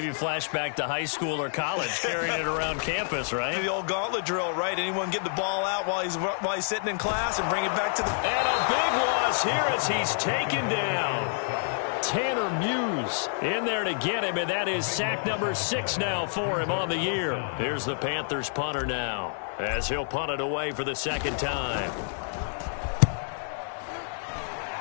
flashback to high school or college, carrying it around campus, right? The old gauntlet drill, right? Anyone get the ball out while he's sitting in class and bring it back to the... And a big loss here as he's taken down. Tanner Muse in there to get him, and that is sack number 6 now for him on the year. Here's the Panthers punter now as he'll punt it away for the 2nd time.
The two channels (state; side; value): silent; right; digital silence